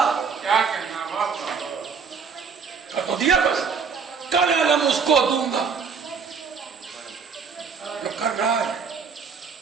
تو دیا, بس کل علم اس کو دوں گا. جو کر رہا ہے,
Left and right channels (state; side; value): quieter; left; 5.8 dB